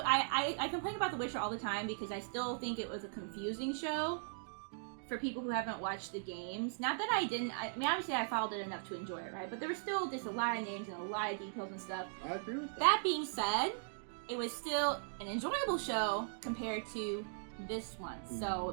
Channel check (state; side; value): silent; left; digital silence